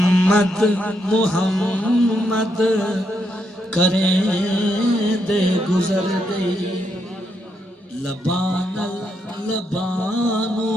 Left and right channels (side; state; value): both; normal; correlation 0.79